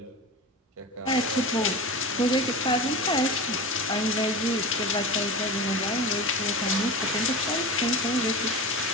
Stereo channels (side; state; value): both; normal; correlation 0.28